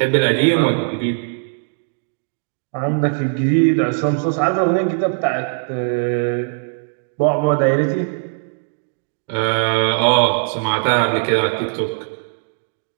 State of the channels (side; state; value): left; silent; digital silence